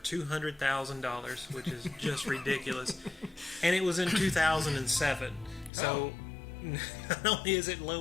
which is just ridiculous. And it was in 2007. So not only is it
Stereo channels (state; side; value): drops out; right; at 5.7 s